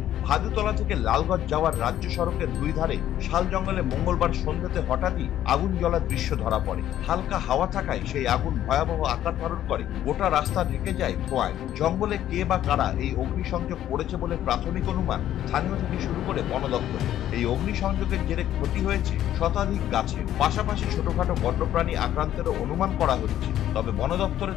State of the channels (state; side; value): quieter; right; 12.0 dB